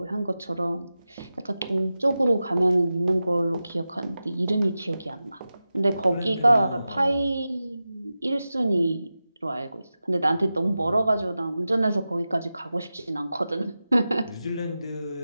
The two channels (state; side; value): inverted; both; correlation -0.94